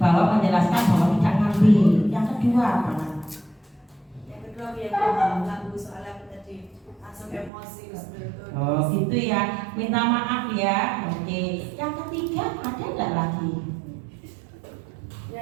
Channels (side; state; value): left; drops out; at 7.5 s